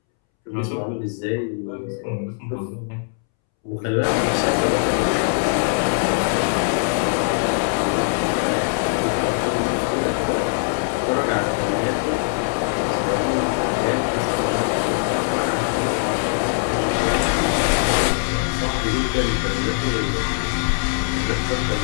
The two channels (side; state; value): right; silent; 65 dB below the other